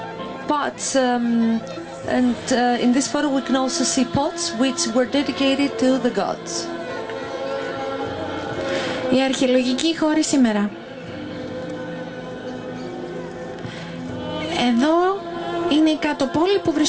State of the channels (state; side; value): identical; both; correlation 1.00